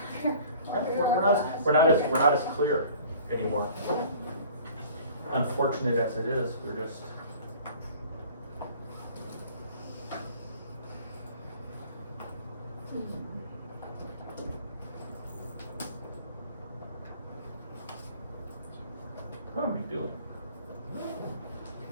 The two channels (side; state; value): both; inverted; correlation -0.48